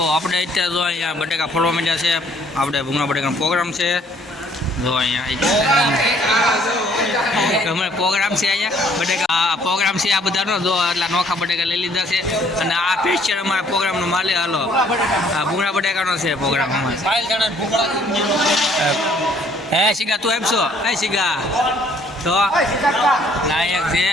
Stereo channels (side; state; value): both; normal; correlation 0.62